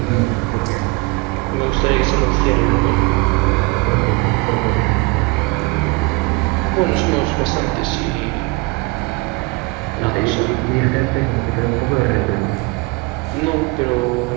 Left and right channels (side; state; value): left; quieter; 26.0 dB